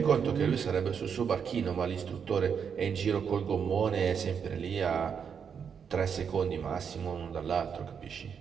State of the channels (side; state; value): left; quieter; 7.0 dB